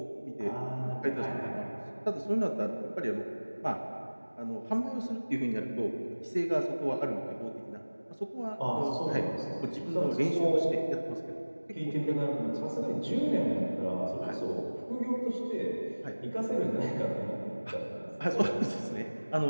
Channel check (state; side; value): inverted; both; correlation -1.00